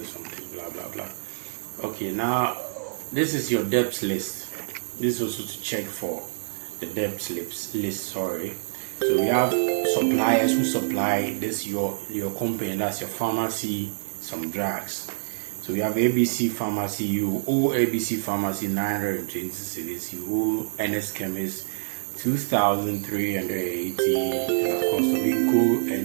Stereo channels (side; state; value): left; silent; 56 dB below the other